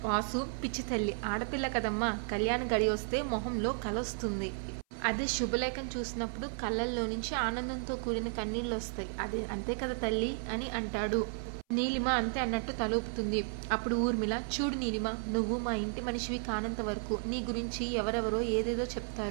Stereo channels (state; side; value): silent; left; 55 dB below the other